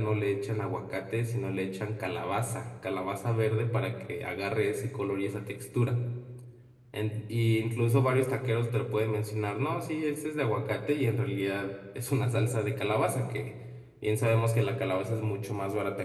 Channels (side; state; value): both; identical; correlation 1.00